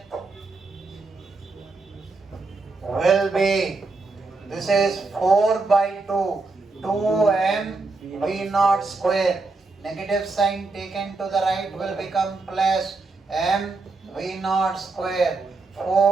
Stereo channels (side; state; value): left; quieter; 3.7 dB